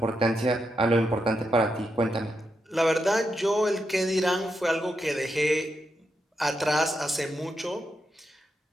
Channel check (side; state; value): both; normal; correlation 0.84